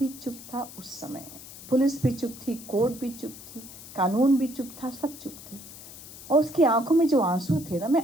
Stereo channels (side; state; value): left; noise; hiss, 15 dB below the sound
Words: चुप था उस समय, पुलिस भी चुप थी, कोर्ट भी चुप थी, कानून भी चुप था, सब चुप थे. और उसकी आंखों में जो आंसू थे ना,